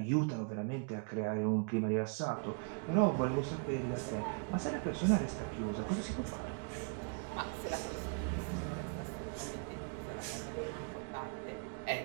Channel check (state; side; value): quieter; left; 39.6 dB